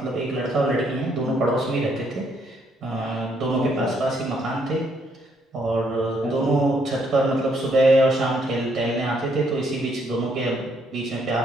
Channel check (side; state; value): both; normal; correlation 0.71